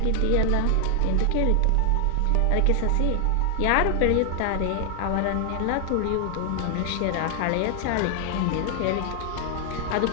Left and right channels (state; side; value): different; both; correlation 0.00